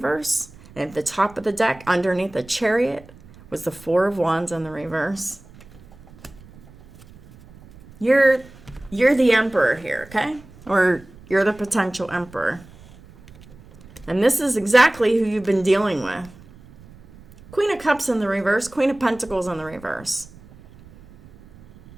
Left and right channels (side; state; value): right; noise; rumble, 22 dB below the sound